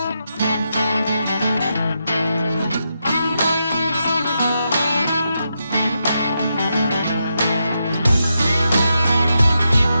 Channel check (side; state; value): both; inverted; correlation -0.84